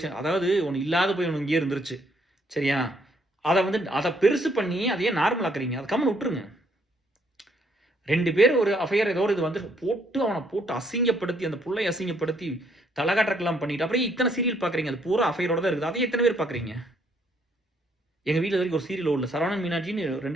அதாவது ஒன்று இல்லாத போய் ஒன்று இங்கேயே இருந்துருச்சு, சரியா? அதை பெருசு பண்ணி அதையே நார்மல் ஆக்குறீங்க, அதை கம்மன் விட்டுருங்க. 2 பேர் ஒரு அஃபையர் ஏதோ ஒரு இது வந்து அவனை போட்டு அசிங்கப்படுத்தி, அந்த புள்ளை அசிங்கப்படுத்தி தலைகாட்டலாம் பண்ணிட்டு அப்புறம் இத்தனை சீரியல் பார்க்குறீங்க, அது பூரா அஃபையரோட தான் இருக்குது, அதை எத்தனை பேர் பார்க்குறீங்க? எங்கள் வீட்டில் வரைக்கும் ஒரு சீரியல் ஓடல, சரவணன் மீனாட்சின்னு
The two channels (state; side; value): normal; both; correlation 0.69